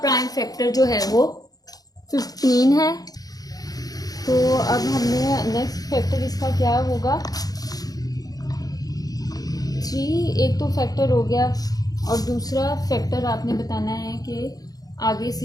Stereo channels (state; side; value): late; right; 0.18 ms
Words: फैक्टर जो है वो 15 है। तो अब हमने नेक्स्ट फैक्टर इसका क्या होगा, 3 एक तो फैक्टर हो गया और दूसरा फैक्टर आपने बताना है कि आगे